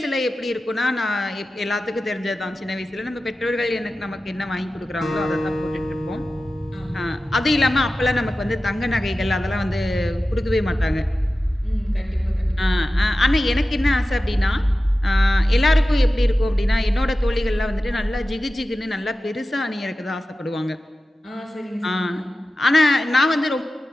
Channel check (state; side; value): normal; both; correlation 0.94